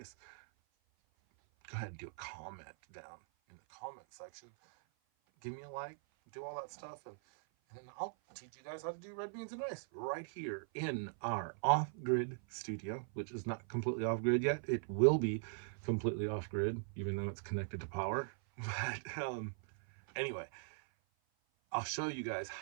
go ahead and do a comment down in the comment section. Give me a like, do all that stuff, and I'll teach you guys how to do red beans and rice right here in our off grid studio, which is not completely off grid yet. It will be completely off grid, even though it's connected to power. But anyway, I'll show you guys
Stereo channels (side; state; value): left; silent; 51 dB below the other